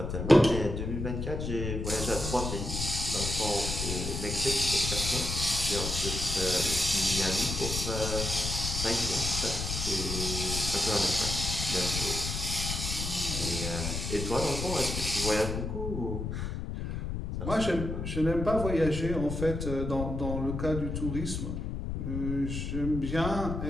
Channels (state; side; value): noise; left; rumble, 4 dB below the sound